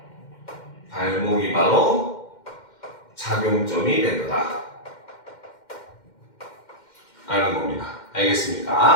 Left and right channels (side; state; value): right; late; 2.1 ms